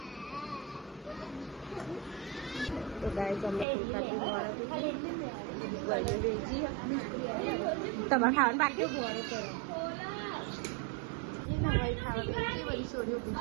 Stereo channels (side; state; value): left; drops out; at 3.7 s